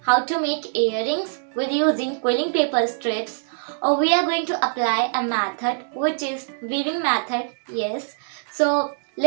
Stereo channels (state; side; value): silent; left; digital silence